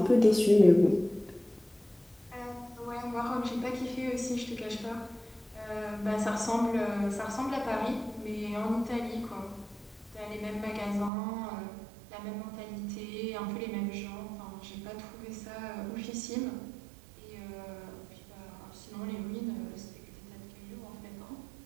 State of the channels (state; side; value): drops out; left; at 11.1 s